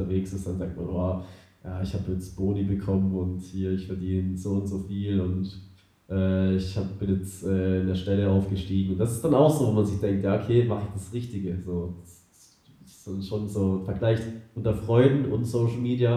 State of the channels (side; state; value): both; identical; correlation 1.00